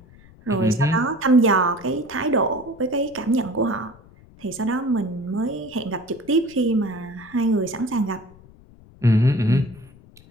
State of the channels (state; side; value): noise; left; rumble, 24 dB below the sound